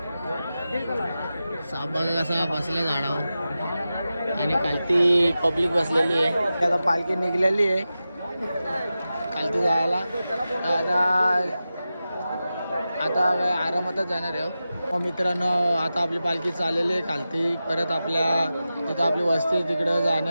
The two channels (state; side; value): inverted; both; correlation -0.93